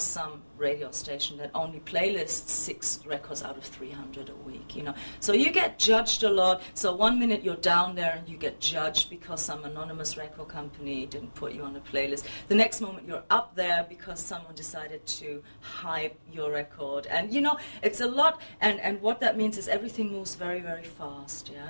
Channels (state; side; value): inverted; both; correlation -1.00